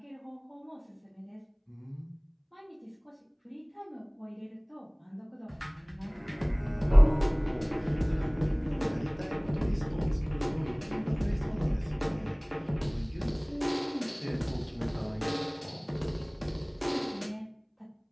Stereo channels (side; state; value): both; identical; correlation 1.00